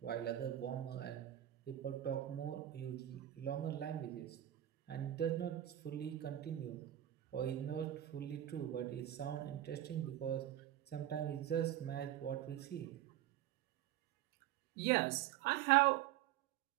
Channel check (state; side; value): quieter; left; 12.7 dB